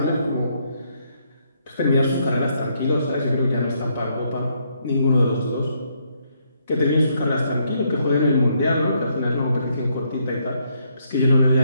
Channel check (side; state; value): both; inverted; correlation -0.73